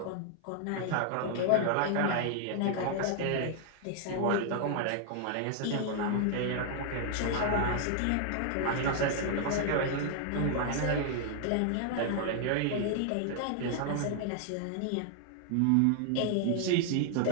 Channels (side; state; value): both; different; correlation 0.00